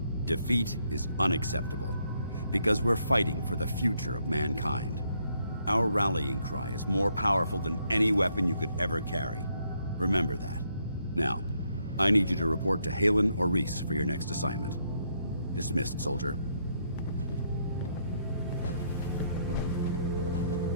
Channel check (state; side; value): inverted; both; correlation -0.74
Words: defeat is unacceptable, because we're fighting for the future of mankind. Our rallying cry is more powerful than any weapon you could ever carry. Remember that. Now, I need you to report to Halen or Reese for your next assignment. Dismissed, soldier.